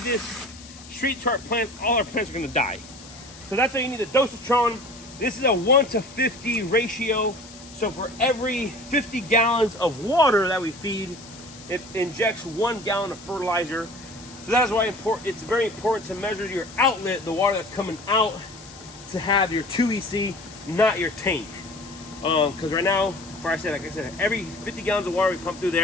this straight to our plants, all our plants are going to die. So that's why you need the dosatron. This is a 1:50 ratio. So for every 50 gallons of water that we feed, it injects 1 gallon of fertilizer. So that is why it's very important to measure your outlet, the water that's coming out, to have your 2 EC, not your tank. Because right now, like I said, every 50 gallons of water we pump through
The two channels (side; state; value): left; noise; hiss, 18 dB below the sound